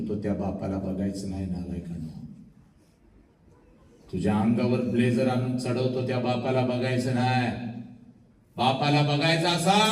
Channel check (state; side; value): identical; both; correlation 1.00